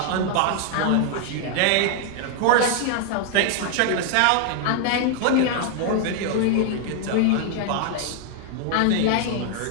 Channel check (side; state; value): both; different; correlation 0.00